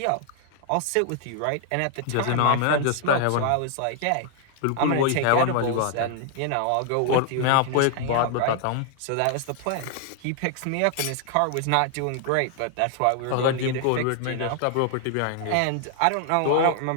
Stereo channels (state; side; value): different; both; correlation 0.00